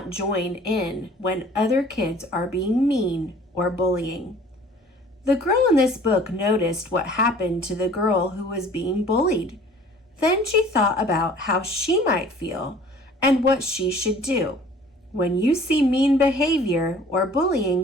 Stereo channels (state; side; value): normal; both; correlation 0.50